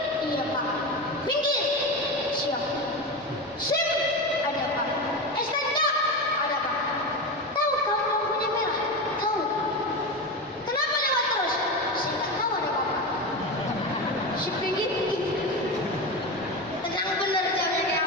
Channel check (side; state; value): both; normal; correlation 0.21